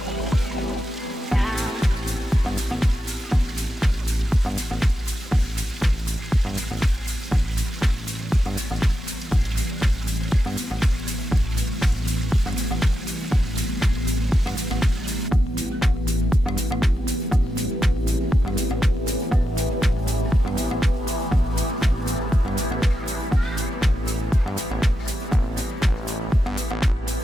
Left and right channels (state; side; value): normal; both; correlation 0.87